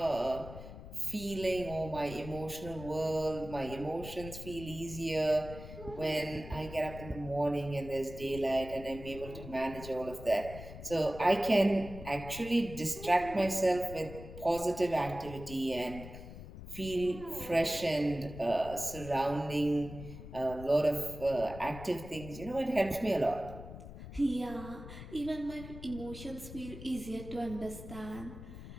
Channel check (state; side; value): noise; left; rumble, 12 dB below the sound